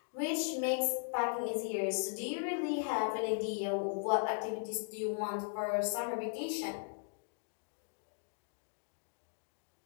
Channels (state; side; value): silent; right; digital silence